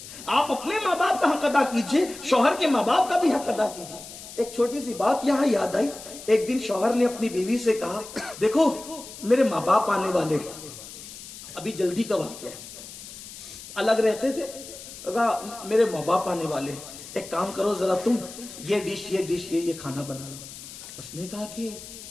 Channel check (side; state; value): left; noise; hiss, 14 dB below the sound